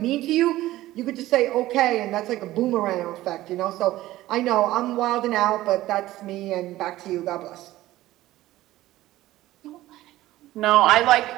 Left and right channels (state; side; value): quieter; left; 16.0 dB